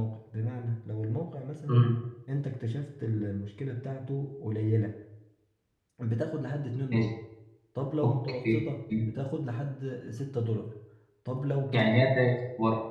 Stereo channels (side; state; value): both; identical; correlation 1.00